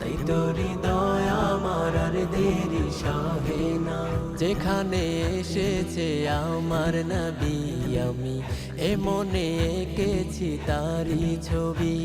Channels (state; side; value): identical; both; correlation 1.00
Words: তোরি দয়া আমার আর দেরি সহে না। যেখানে এসেছে আমার নবী, আমি এ মনে এঁকেছি তারি ছবি।